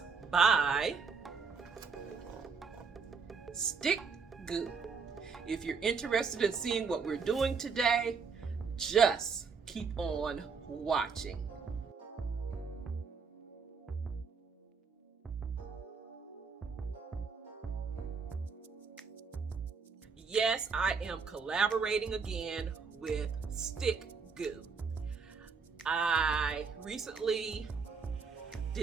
by Stickgoo. If you're interested in seeing what we're doing today, just keep on watching. Yes, I am collaborating again with Stickgoo. I recently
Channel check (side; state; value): left; quieter; 5.3 dB